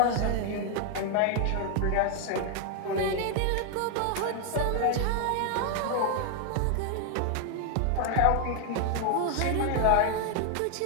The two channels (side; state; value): both; different; correlation 0.00